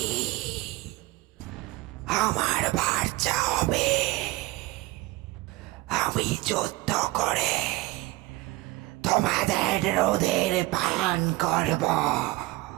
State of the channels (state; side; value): quieter; left; 19.4 dB